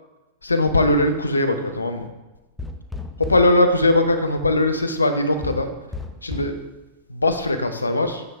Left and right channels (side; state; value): both; inverted; correlation -0.66